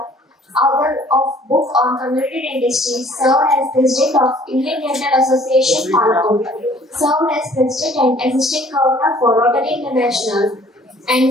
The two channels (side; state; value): both; normal; correlation 0.55